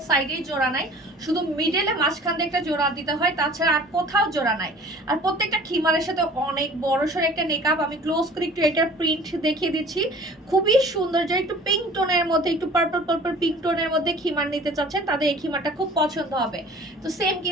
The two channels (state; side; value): normal; both; correlation 0.47